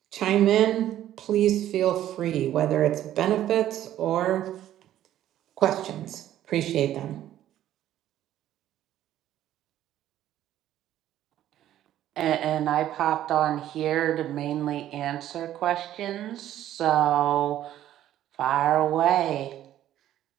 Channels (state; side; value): quieter; left; 12.4 dB